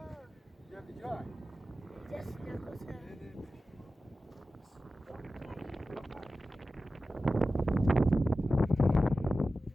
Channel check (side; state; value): both; normal; correlation 0.94